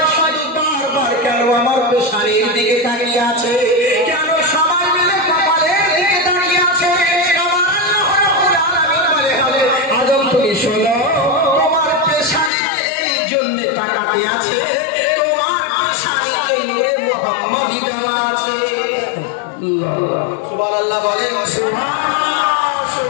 শুধু বারবার কেন আমার পেশানির দিকে তাকিয়ে আছে, কেন সবাই মিলে কপালের দিকে তাকিয়ে আছে। আমার আল্লাহ রাব্বুল আলামিন বলে, আদম তুমি শোনো, তোমার পেশানিতে এই জন্য তাকাতে আছে, তোমার পেশানিতে নূরে মুহাম্মাদি দেওয়া আছে। সুবহানাল্লাহ বলেন, সুবহানাল্লাহ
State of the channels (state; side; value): drops out; right; at 12.5 s